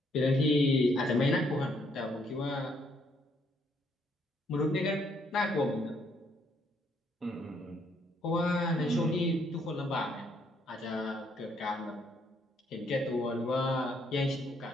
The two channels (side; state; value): both; normal; correlation 0.70